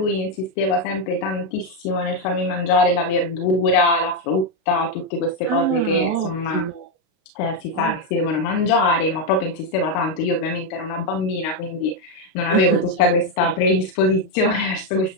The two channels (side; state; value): right; late; 32 ms